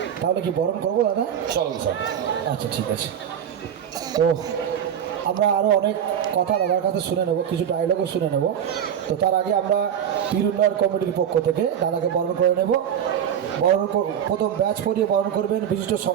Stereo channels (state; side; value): quieter; left; 9.1 dB